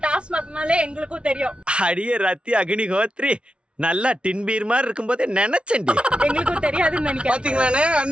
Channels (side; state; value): left; late; 0.058 ms